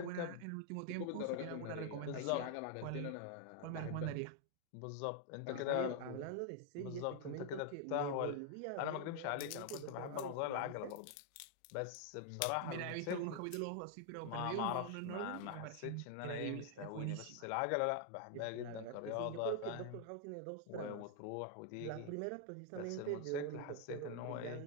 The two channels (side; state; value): both; different; correlation 0.00